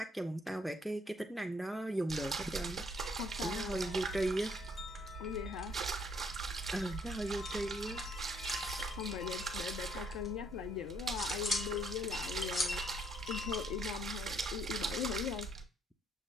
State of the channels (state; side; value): normal; both; correlation 0.67